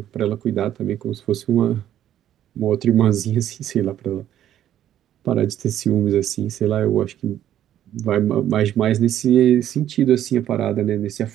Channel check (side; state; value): left; quieter; 11.4 dB